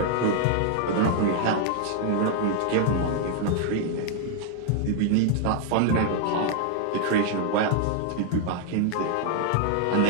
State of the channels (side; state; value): both; different; correlation 0.00